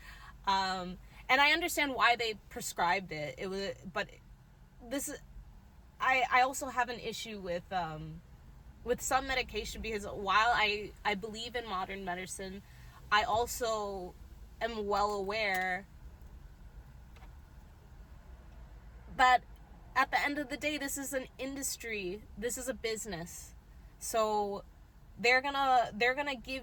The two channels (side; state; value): both; identical; correlation 1.00